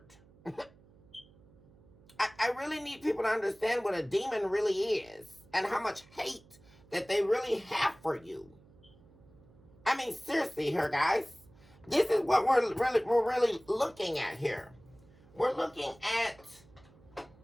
I really need people to understand what a demon really is. And how much hate that they really have for you. I mean, seriously here, guys. This is what we're really looking at here. We're looking at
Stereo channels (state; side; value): noise; right; hum, 26 dB below the sound